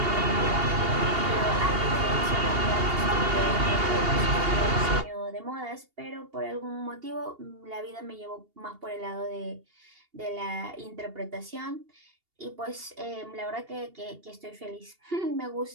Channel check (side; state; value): left; late; 2.8 ms